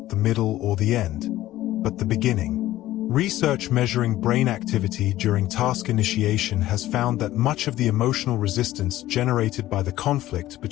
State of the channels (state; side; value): quieter; right; 15.0 dB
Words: the middle or the end, but the beginning. Research measuring brain activity during task initiation has found that much of the emotional resistance generated by the conflict